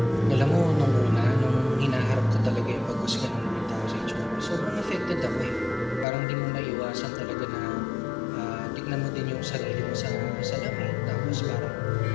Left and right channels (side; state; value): right; drops out; at 6.1 s